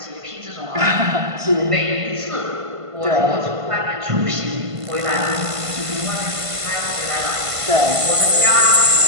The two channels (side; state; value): left; late; 1.5 ms